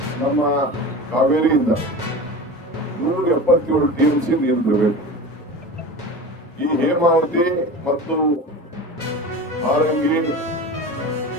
ನಮ್ಮ ಕಾವೇರಿಯಿಂದ 177 TMC ನೀರು ಬಿಡಬೇಕು. ಈ ಹೇಮಾವತಿ ಮತ್ತು ಹಾರಂಗಿ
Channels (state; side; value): normal; both; correlation 0.32